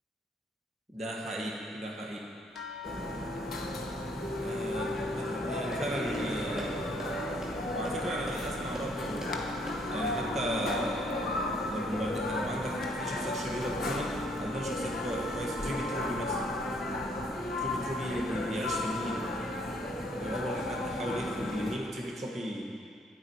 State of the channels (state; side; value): normal; both; correlation 0.65